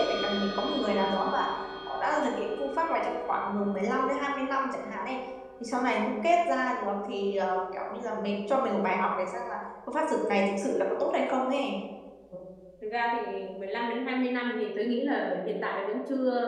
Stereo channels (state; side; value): identical; both; correlation 1.00